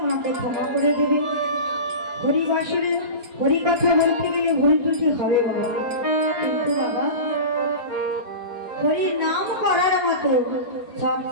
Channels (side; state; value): left; late; 4.2 ms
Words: মাকে ক্ষমা করে দেবে। হরিবাসরে হরি কথা বলতে গেলে ভুল ত্রুটি হবে বাবা, কিন্তু বাবা হরির নাম করার মতো সব